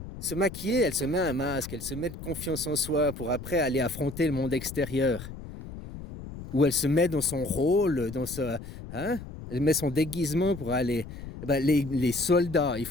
Se maquiller, elle se met un masque, elle se met de confiance en soi pour après aller affronter le monde extérieur. Ou elle se met dans son rôle, hein? Elle met son déguisement pour aller. Eh ben, les soldats, ils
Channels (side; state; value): left; noise; rumble, 12 dB below the sound